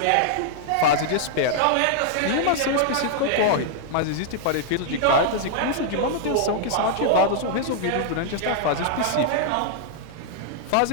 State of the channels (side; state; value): both; different; correlation -0.01